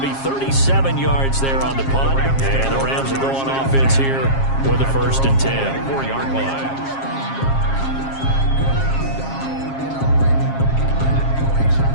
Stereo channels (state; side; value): late; right; 7.4 ms